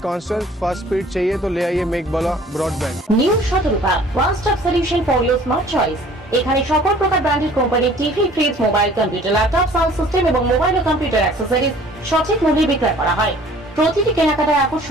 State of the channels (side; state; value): both; normal; correlation 0.52